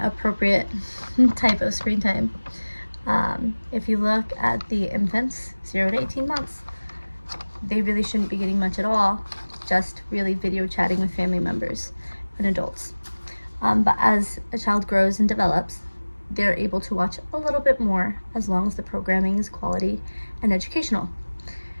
appropriate type of screen time. If you look at the infants, 0 to 18 months, they really shouldn't be getting much at all, just really video chatting with family members and adults. But as a child grows and develops, they're able to watch a little bit more as long as the programming is quality and educational.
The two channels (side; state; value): both; inverted; correlation -1.00